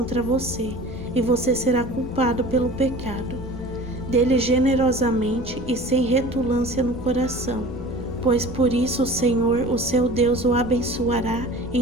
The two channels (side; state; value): both; normal; correlation 0.41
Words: você, e você será culpado pelo pecado. Dê-lhe generosamente e sem retulância no coração, pois por isso o Senhor, o seu Deus, o abençoará